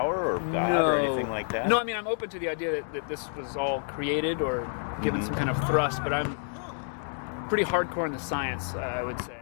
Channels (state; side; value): silent; right; 59 dB below the other